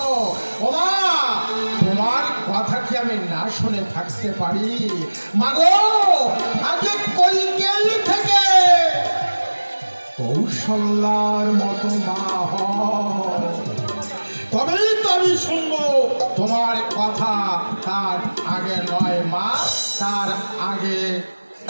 ও মা, তোমার কথা কি আমি না শুনে থাকতে পারি? মাগো, আগে কইকেল থেকে কৌশল্যার মতো মা হয়, তবেই তো আমি শুনবো তোমার কথা। তার আগে নয় মা, তার আগে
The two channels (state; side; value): inverted; both; correlation -1.00